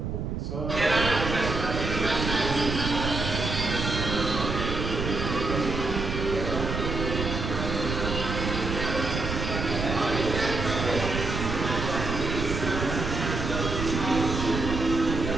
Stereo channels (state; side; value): noise; right; rumble, 3 dB below the sound